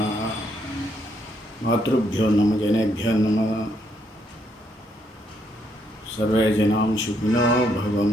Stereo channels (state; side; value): normal; both; correlation 0.74